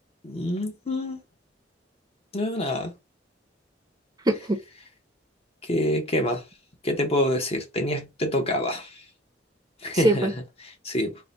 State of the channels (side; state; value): both; normal; correlation 0.46